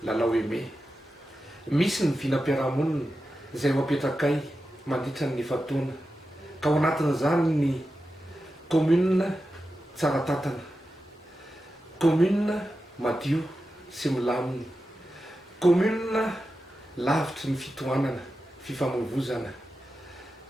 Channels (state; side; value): normal; both; correlation 0.91